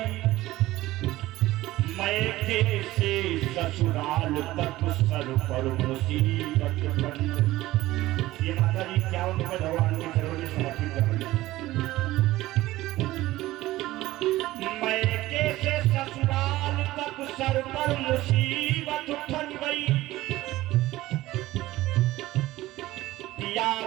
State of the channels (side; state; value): left; quieter; 16.9 dB